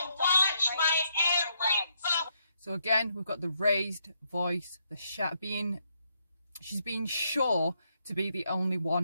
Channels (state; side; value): inverted; both; correlation -0.75